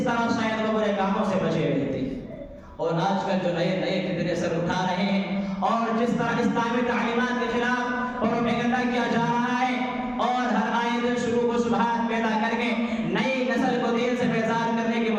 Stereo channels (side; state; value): both; identical; correlation 1.00